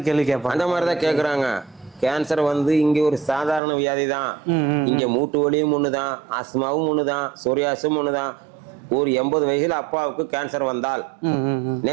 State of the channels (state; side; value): drops out; left; at 3.6 s